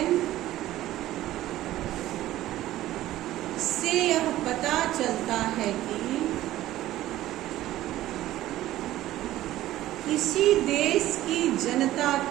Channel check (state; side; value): quieter; left; 14.8 dB